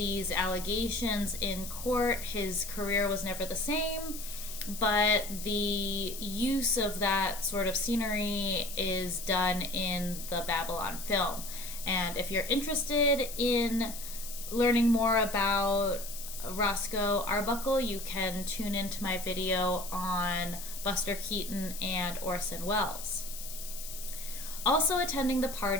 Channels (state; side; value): noise; left; hiss, 10 dB below the sound